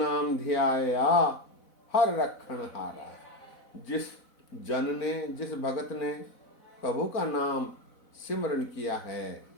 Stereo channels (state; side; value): late; right; 4.0 ms